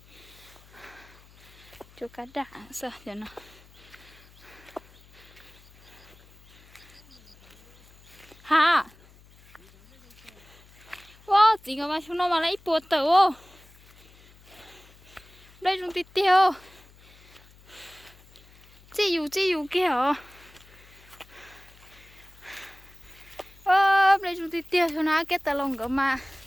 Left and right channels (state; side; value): noise; left; hum, 25 dB below the sound